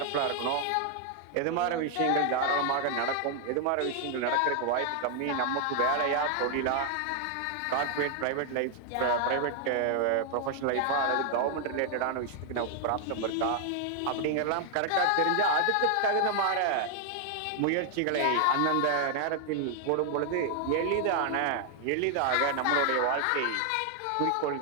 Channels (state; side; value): different; both; correlation 0.00